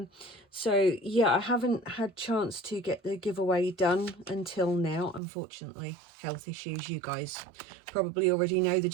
So yeah, I haven't had chance to get the giveaway done until now, unfortunately. Health issues, you guys probably already know the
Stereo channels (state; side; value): drops out; left; at 5.2 s